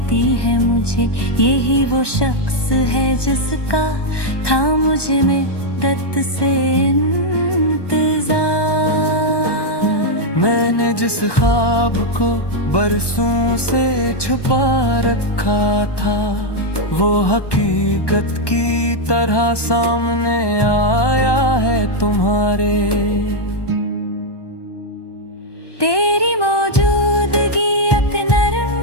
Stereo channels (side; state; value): right; late; 1.2 ms